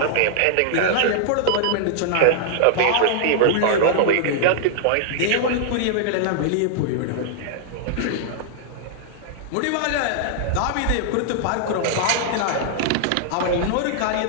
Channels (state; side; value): different; both; correlation -0.01